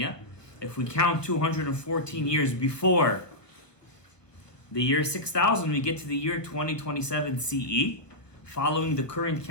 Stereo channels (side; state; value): right; late; 1.0 ms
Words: If we count 214 years before the year 6,000, we get to the year 2027 CE, following the current